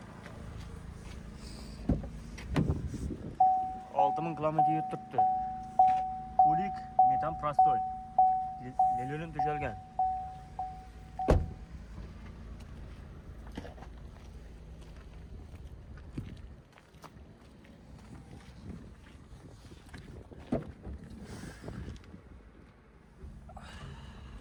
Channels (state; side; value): identical; both; correlation 1.00